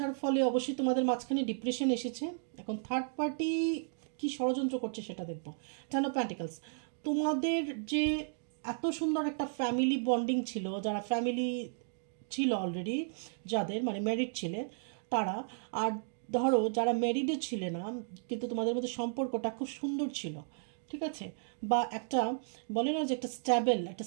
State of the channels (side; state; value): left; silent; digital silence